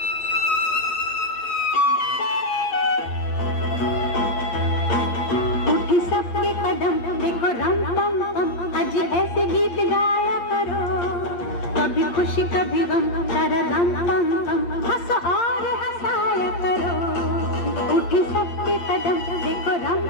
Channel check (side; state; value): right; late; 8.7 ms